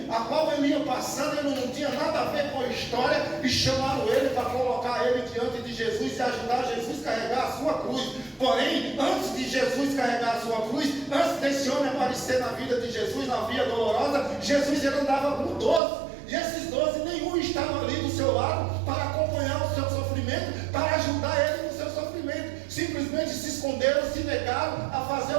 a qual ele ia passando, ele não tinha nada a ver com a história, e chamaram ele para colocar ele diante de Jesus e ajudar Jesus a carregar a sua cruz. Porém, antes de Jesus carregar a sua cruz, antes desse homem aparecer na vida de Jesus, na via dolorosa, Jesus ele andava com 12. E esses 12, nenhum estava ali do seu lado para acompanhar o seu sofrimento, para ajudar ele no seu sofrimento. Simplesmente se esconderam, se negaram a fazer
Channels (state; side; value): drops out; left; at 15.8 s